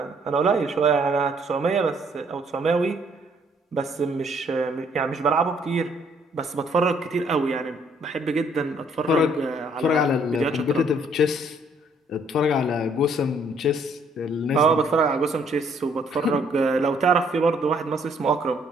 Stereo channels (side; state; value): both; normal; correlation 0.65